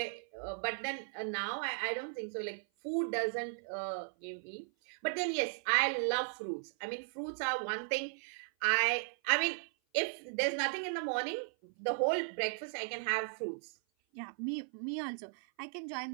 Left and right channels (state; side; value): silent; left; 53 dB below the other